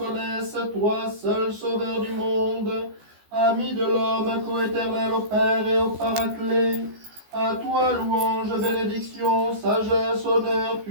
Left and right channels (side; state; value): left; late; 14 ms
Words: toi seul Sauveur du monde, ami de l'homme, coéternel au Père et au Paraclet. À toi louange, bénédiction, sagesse, honneur,